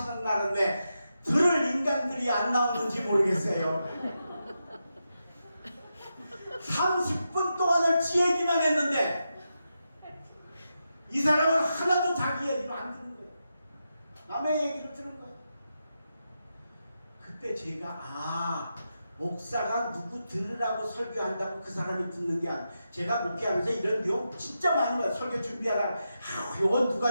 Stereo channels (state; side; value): inverted; both; correlation -0.87